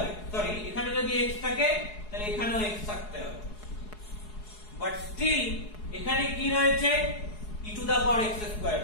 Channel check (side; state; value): right; late; 4.7 ms